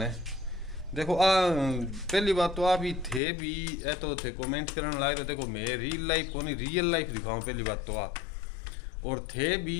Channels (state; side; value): drops out; right; at 3.2 s